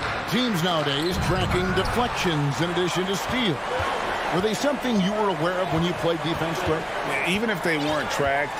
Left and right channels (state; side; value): identical; both; correlation 1.00